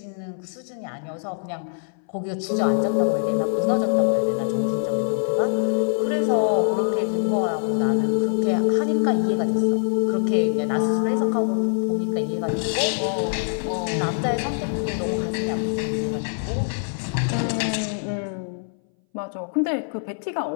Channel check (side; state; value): right; silent; 60 dB below the other